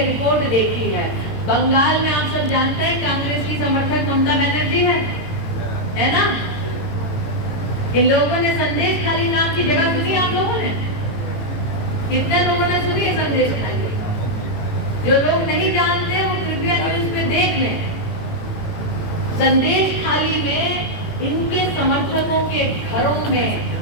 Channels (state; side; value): late; right; 18 ms